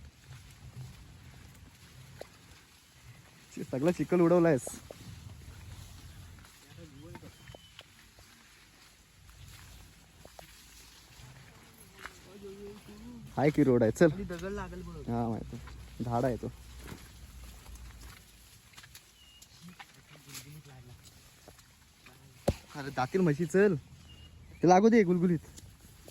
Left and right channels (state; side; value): identical; both; correlation 1.00